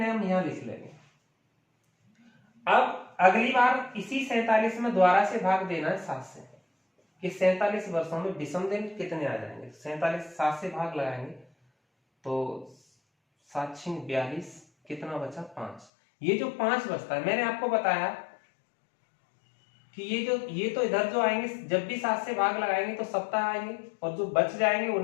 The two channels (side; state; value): right; drops out; at 15.9 s